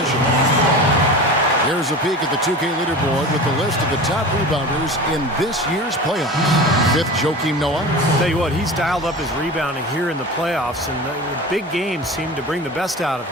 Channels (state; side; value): normal; both; correlation 0.33